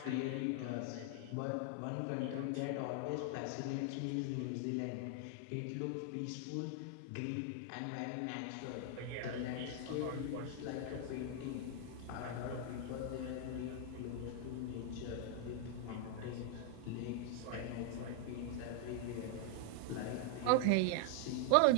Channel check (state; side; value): different; both; correlation 0.00